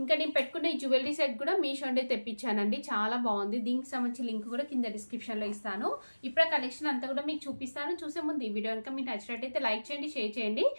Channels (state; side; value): inverted; both; correlation -1.00